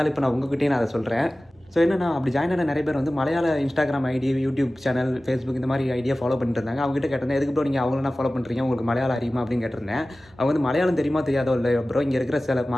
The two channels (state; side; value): normal; both; correlation 0.97